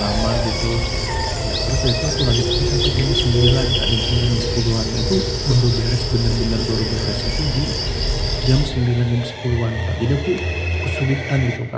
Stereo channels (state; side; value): identical; both; correlation 1.00